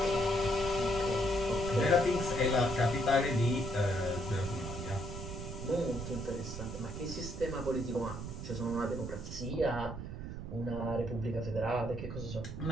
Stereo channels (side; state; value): right; noise; rumble, 7 dB below the sound